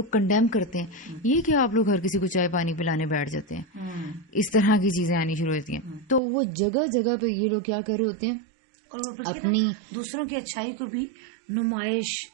کنڈیم کرتے ہیں، یہ کہ آپ لوگ ہر کسی کو چائے پانی پلانے بیٹھ جاتے ہیں. اس طرح کی چیزیں آنی شروع ہوتی ہیں. تو وہ جگہ جگہ پہ یہ لوگ کیا کر رہے ہوتے ہیں، اپنی دوسروں کی اچھائی کو بھی نمائش،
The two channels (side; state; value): left; drops out; at 6.2 s